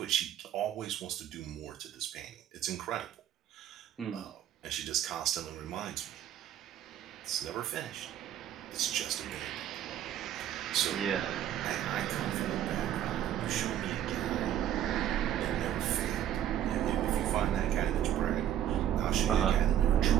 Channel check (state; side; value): quieter; left; 11.0 dB